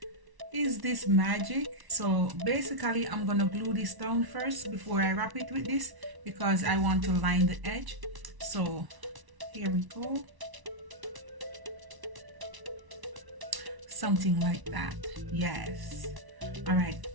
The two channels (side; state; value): left; late; 1.1 ms